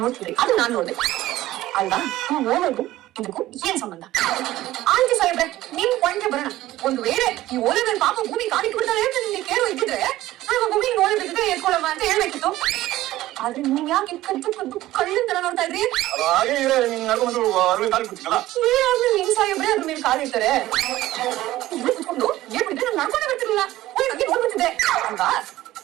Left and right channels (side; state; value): left; quieter; 15.7 dB